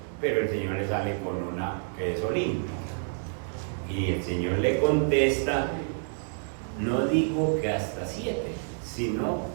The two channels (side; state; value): left; silent; digital silence